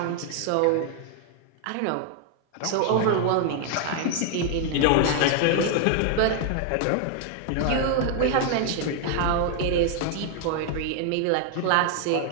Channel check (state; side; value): different; both; correlation 0.00